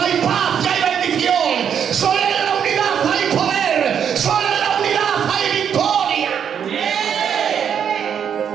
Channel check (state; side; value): quieter; left; 8.1 dB